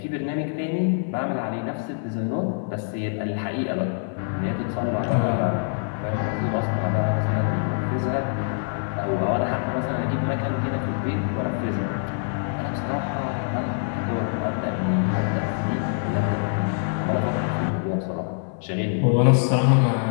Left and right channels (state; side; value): silent; right; 60 dB below the other